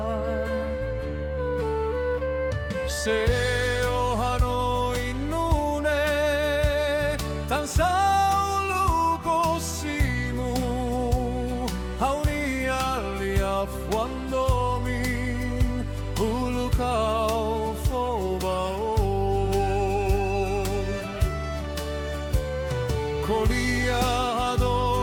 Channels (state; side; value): identical; both; correlation 1.00